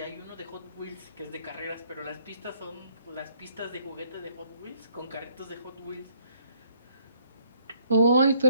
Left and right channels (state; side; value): inverted; both; correlation -0.66